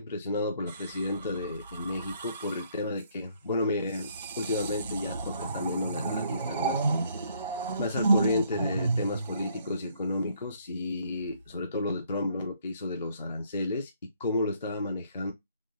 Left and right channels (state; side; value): inverted; both; correlation -0.66